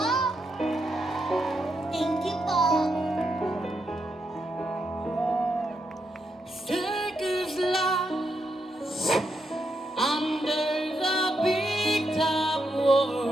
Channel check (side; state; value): both; normal; correlation 0.82